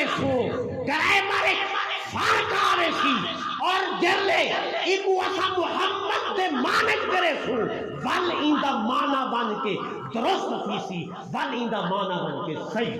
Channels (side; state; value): both; identical; correlation 1.00